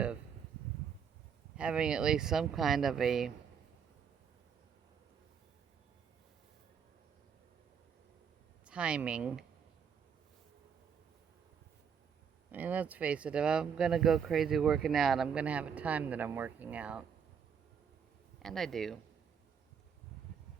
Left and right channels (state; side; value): quieter; left; 7.1 dB